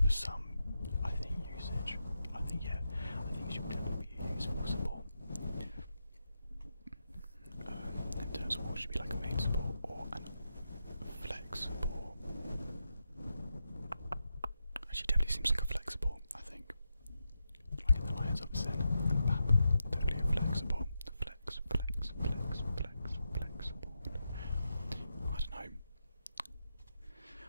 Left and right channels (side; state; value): both; inverted; correlation -0.86